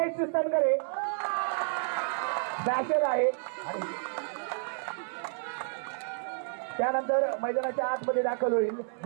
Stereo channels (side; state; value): left; silent; 57 dB below the other